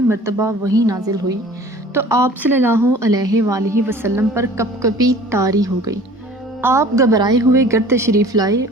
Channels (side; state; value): both; normal; correlation 0.47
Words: مرتبہ وحی نازل ہوئی تو آپ صلی اللہ علیہ وآلہ وسلم پر کپکپی طاری ہو گئی۔ آپ گھبرائے ہوئے گھر تشریف لائے